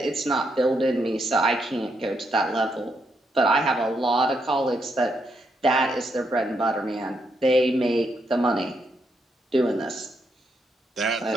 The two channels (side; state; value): both; normal; correlation 0.79